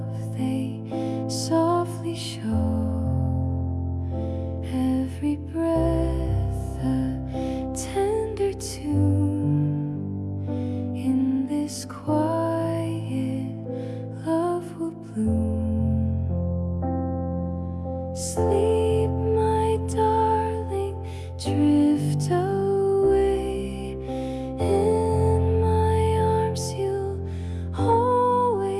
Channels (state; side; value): identical; both; correlation 1.00